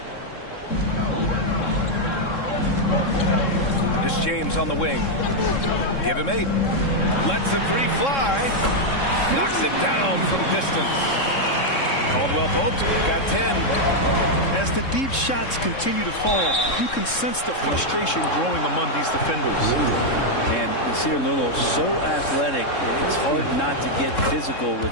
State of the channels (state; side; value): late; right; 3.7 ms